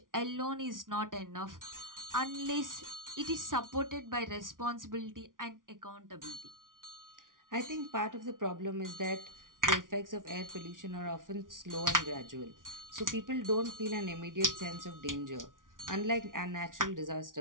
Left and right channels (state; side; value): late; left; 0.89 ms